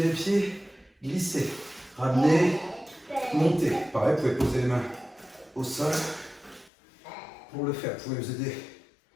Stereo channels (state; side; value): drops out; right; at 6.7 s